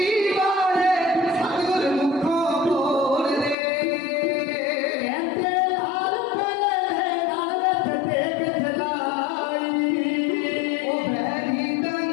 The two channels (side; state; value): right; drops out; at 3.6 s